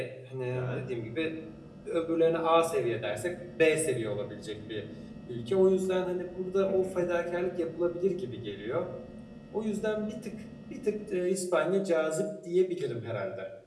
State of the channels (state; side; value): identical; both; correlation 1.00